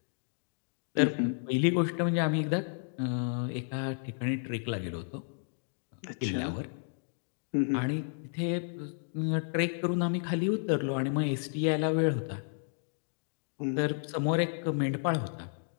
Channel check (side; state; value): right; silent; digital silence